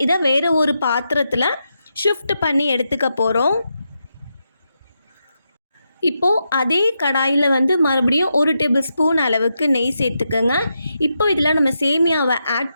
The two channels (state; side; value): inverted; both; correlation -0.85